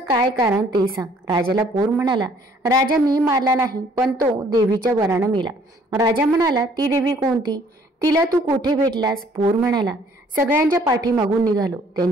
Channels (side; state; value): both; normal; correlation 0.60